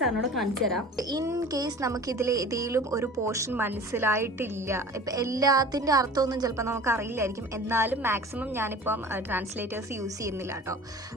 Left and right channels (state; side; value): normal; both; correlation 0.41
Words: കാണിച്ചു തരാം. In case നമുക്കിതിൽ ഏതെങ്കിലും ഒരു portion മനസ്സിലായിട്ടില്ല, ഇപ്പം എല്ലാത്തിൻ്റെ അർത്ഥമൊന്നും ചിലപ്പോൾ നമുക്ക് അറിയില്ലായിരിക്കും, എന്നാലും മാക്സിമം ഞാനിപ്പം ട്രാൻസ്ലേറ്റേഴ്സ് യൂസ് ചെയ്യുന്നില്ല കേട്ടോ.